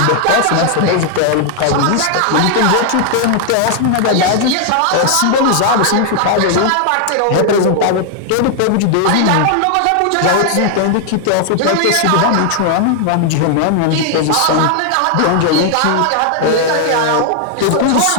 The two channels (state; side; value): different; both; correlation 0.00